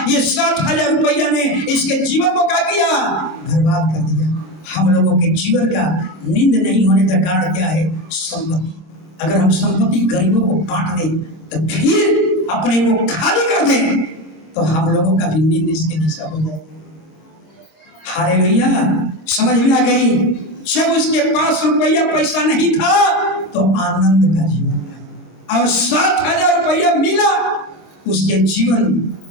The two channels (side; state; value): right; late; 26 ms